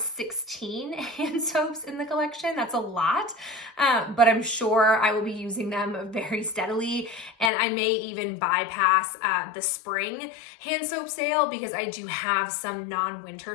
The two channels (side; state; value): right; drops out; at 7.5 s